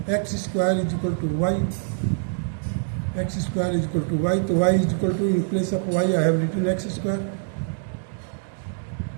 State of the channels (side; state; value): left; silent; digital silence